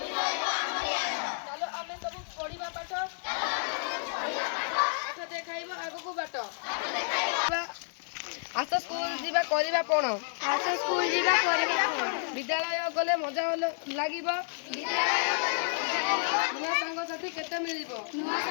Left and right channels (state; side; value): silent; right; digital silence